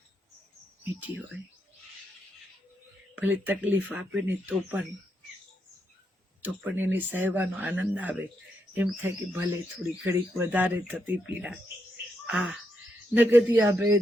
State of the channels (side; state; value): both; normal; correlation 0.81